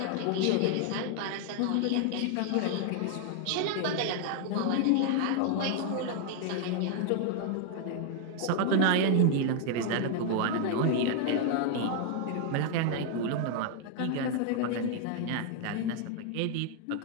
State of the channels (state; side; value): different; both; correlation 0.00